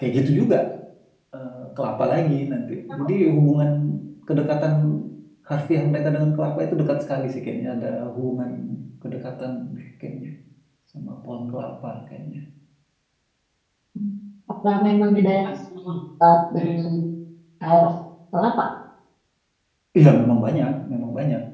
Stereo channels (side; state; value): both; identical; correlation 1.00